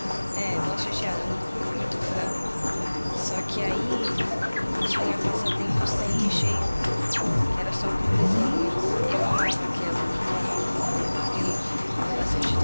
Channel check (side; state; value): both; inverted; correlation -1.00